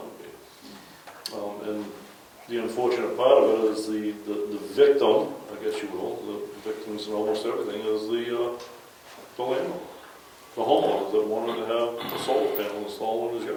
to be? And the unfortunate part of it is the victim, I guess you will, the victims in almost everything, is the landlord, the homeowner that wanted to have a solar panel installed in his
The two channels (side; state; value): both; identical; correlation 1.00